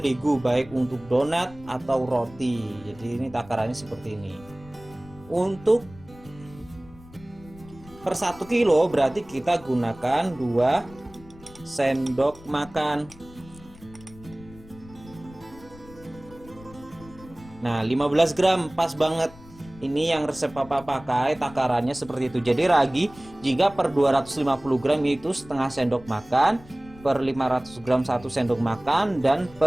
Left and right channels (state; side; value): noise; left; rumble, 21 dB below the sound